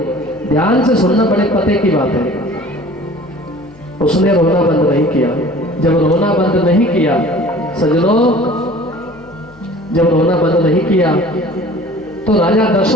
ध्यान से सुनना, बड़े पते की बात है। उसने रोना बंद नहीं किया। जब रोना बंद नहीं किया सजनों, जब रोना बंद नहीं किया तो राजा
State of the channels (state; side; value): noise; left; hum, 26 dB below the sound